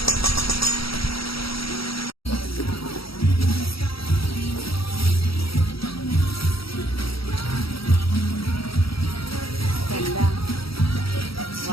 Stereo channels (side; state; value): right; late; 0.75 ms